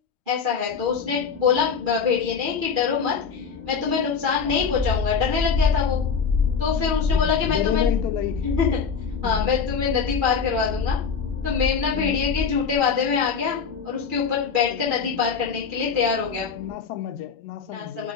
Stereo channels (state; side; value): quieter; right; 6.1 dB